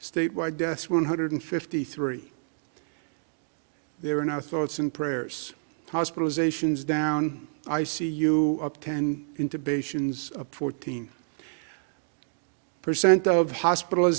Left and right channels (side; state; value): left; silent; digital silence